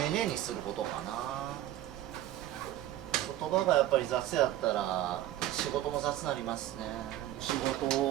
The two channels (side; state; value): left; quieter; 13.6 dB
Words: 寧にすることかな。言葉がやっぱり雑やったら仕事も雑になりますね。仕事